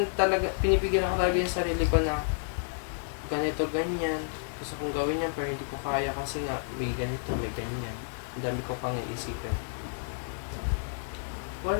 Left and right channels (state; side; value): silent; right; 58 dB below the other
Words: ako talaga yung sarili ko na ganito, ganyan. Gusto kong gawin yan pero hindi ko kaya kasi nga may ganito, may ganyan. Ang dami ko pang iisipin.